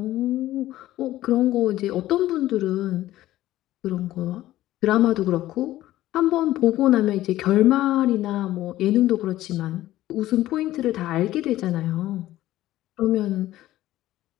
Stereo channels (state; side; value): quieter; right; 14.9 dB